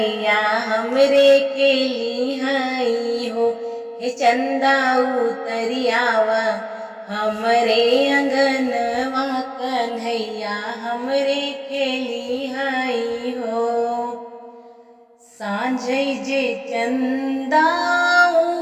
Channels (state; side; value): identical; both; correlation 1.00